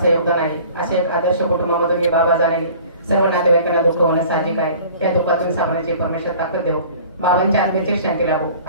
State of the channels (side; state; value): both; inverted; correlation -0.47